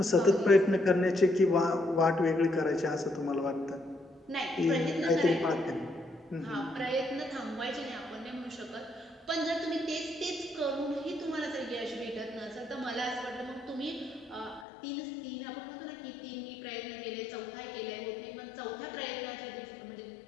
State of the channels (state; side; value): drops out; right; at 14.7 s